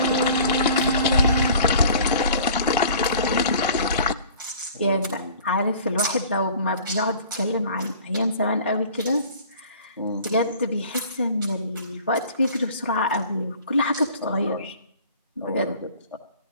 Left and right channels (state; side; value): inverted; both; correlation -0.48